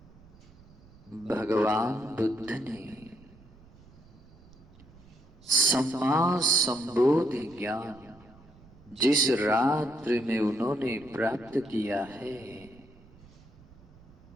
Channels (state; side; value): noise; right; rumble, 24 dB below the sound